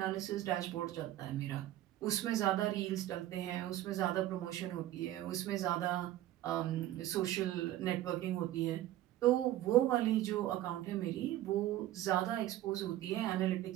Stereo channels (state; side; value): quieter; left; 14.1 dB